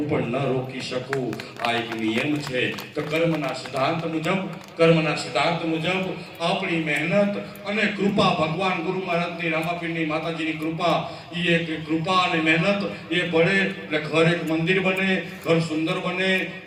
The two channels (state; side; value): identical; both; correlation 1.00